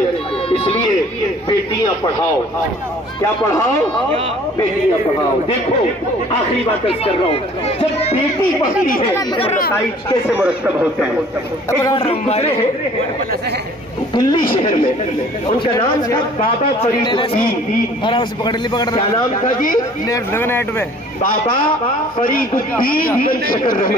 اس لیے بیٹیاں پڑھاؤ۔ کیا پڑھاؤ؟ بیٹیاں پڑھاؤ۔ دیکھو آخری بات کر رہا ہوں، جب بیٹی پڑھتی ہے تو نتائج کیسے مرتب ہوتے ہیں۔ گزرے ہیں دلی شہر میں، ان کا نام تھا بابا فرید الدین۔ کیا نام تھا جی؟ بابا فرید الدین بن شکر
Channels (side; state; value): both; normal; correlation 0.52